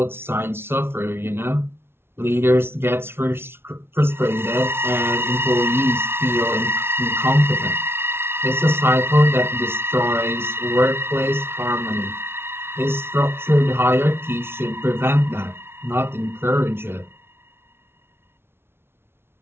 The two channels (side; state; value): left; late; 0.12 ms